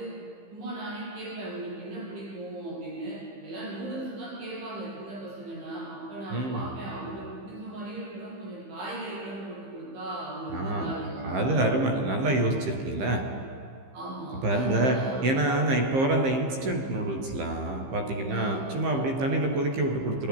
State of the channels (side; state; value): left; late; 15 ms